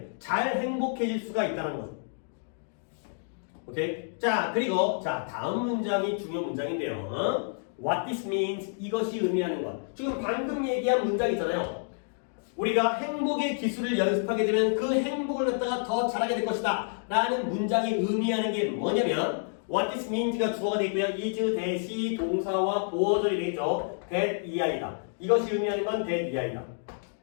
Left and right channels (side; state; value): right; silent; digital silence